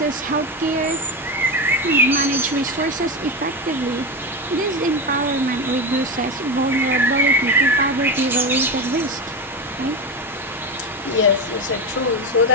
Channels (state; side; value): normal; both; correlation 0.16